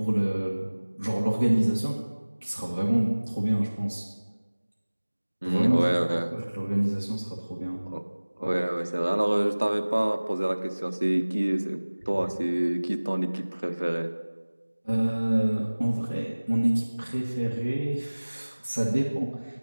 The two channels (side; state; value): both; inverted; correlation -1.00